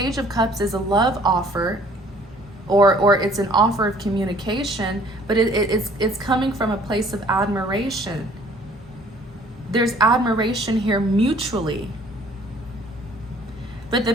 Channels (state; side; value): normal; both; correlation 0.56